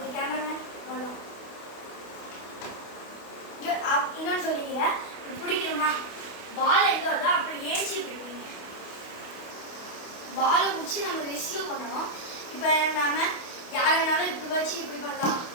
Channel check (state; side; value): late; right; 28 ms